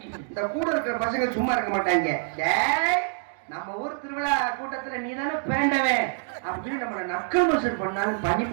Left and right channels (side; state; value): left; silent; 56 dB below the other